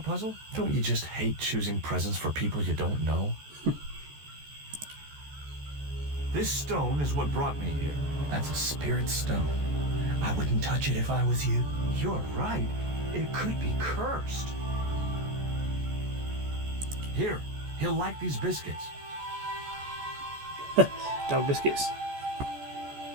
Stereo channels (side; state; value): left; late; 14 ms